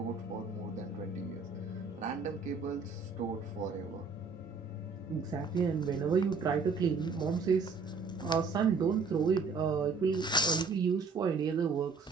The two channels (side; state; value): left; quieter; 4.7 dB